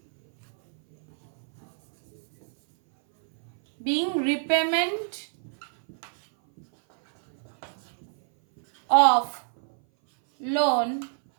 being repayment of loan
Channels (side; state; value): left; silent; 58 dB below the other